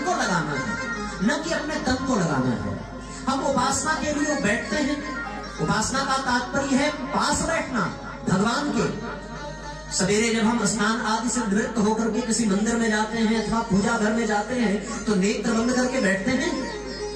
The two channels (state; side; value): identical; both; correlation 1.00